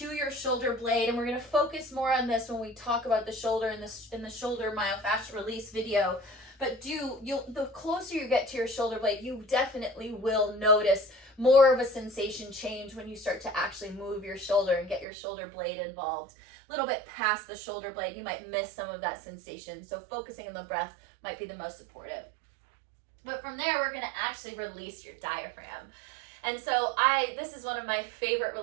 your shoulder blade, and we're going to focus more on this when we talk about the shoulder in the shoulder myofascial release video, but the closer you get to your shoulder blade, you definitely will notice more of a sensation change when you start to actually move your shoulder and get your shoulder blade involved. A little bit past the shoulder blade, you might miss some of that sensation. So focusing on the breath might be the most supportive. But from there, we're going to actually release your diaphragm. And so this is one of my favorite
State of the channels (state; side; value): drops out; left; at 15.1 s